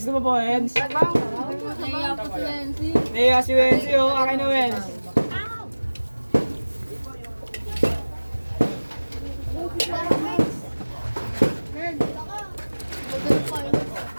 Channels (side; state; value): both; inverted; correlation -1.00